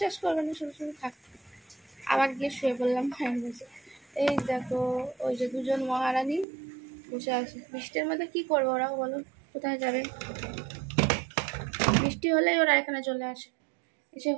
করবে না, শুধু শুধু থাক। আবার গিয়ে শুয়ে পড়লাম ফ্যান বসে। এই দেখো ওই যে দুজন মহারানী বসে আছে। বৃষ্টির মধ্যে কি করবো ওরাও, বলো কোথায় যাবে? বৃষ্টি হলেই ওরা এখানে চলে আসে, এসে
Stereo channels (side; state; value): left; drops out; at 6.5 s